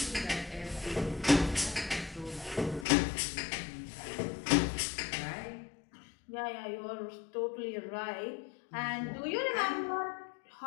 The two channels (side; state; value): right; drops out; at 2.9 s